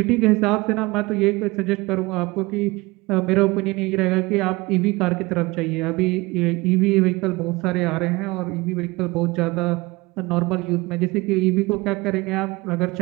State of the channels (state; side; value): quieter; left; 22.9 dB